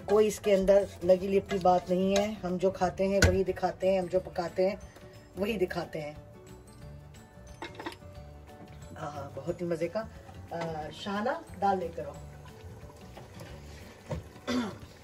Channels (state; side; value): identical; both; correlation 1.00